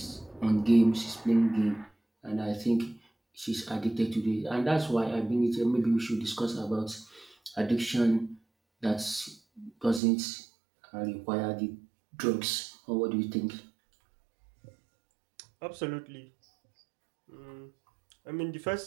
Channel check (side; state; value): left; drops out; at 10.0 s